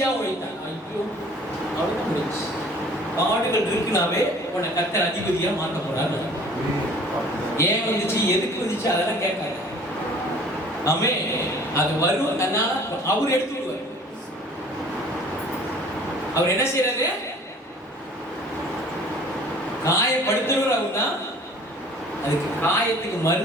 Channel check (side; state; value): both; normal; correlation 0.50